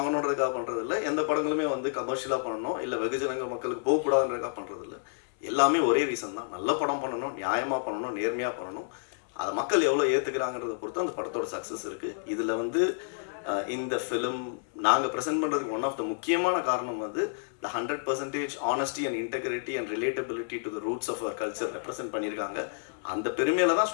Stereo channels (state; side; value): silent; right; 58 dB below the other